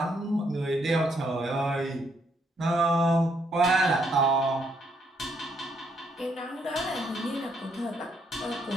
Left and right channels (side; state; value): both; normal; correlation 0.73